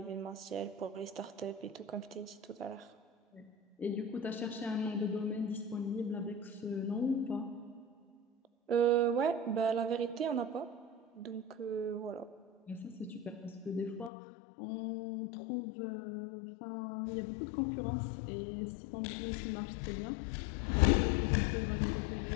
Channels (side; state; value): right; drops out; at 14.1 s